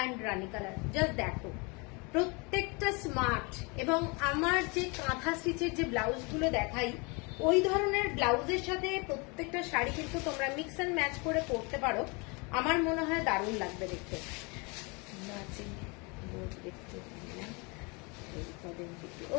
Rani colour, just দেখো প্রত্যেকটা স্মার্ট। এবং আমার যে কাঁথা স্টিচের যে ব্লাউজ গুলো দেখাই, ওই ধরনের ব্লাউজের সাথে প্রত্যেকটা শাড়ি কিন্তু তোমরা মিক্স অ্যান্ড ম্যাচ করে পরতে পারো। আমার মনে হয় দারুণ লাগবে দেখতে।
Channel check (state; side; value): quieter; right; 29.7 dB